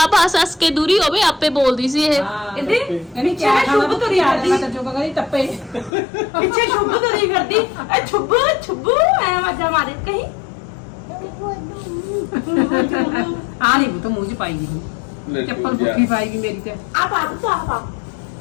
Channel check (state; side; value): drops out; right; at 5.9 s